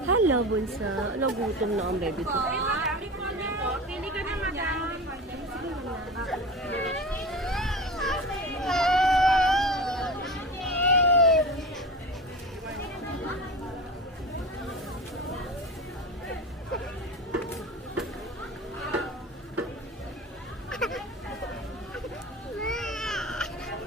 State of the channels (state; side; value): normal; both; correlation 0.30